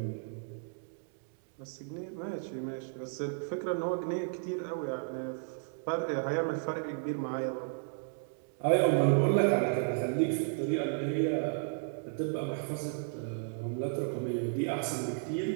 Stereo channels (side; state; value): left; silent; digital silence